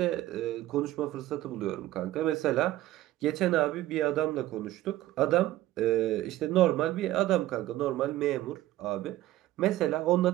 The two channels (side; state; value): left; quieter; 15.2 dB